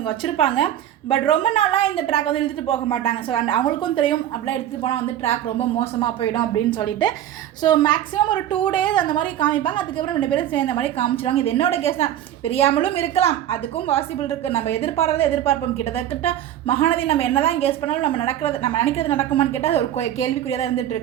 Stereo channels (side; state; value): left; quieter; 11.5 dB